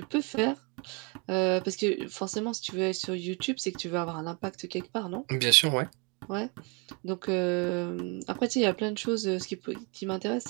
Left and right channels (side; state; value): left; quieter; 32.0 dB